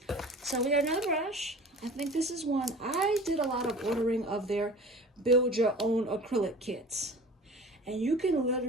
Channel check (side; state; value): both; normal; correlation 0.41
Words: So we got another brush. I think this is one. I did a lot of ordering of their build your own acrylic kits, and you can